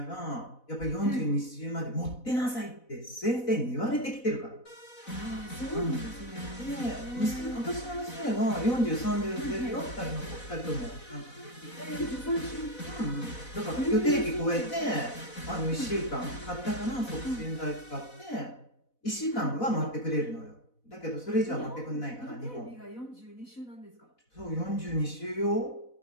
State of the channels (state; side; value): late; right; 4.0 ms